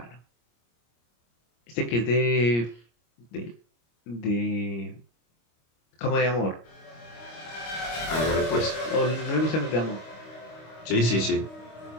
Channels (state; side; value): late; right; 25 ms